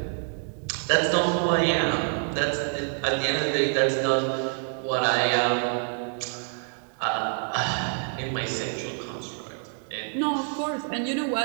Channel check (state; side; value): silent; left; 55 dB below the other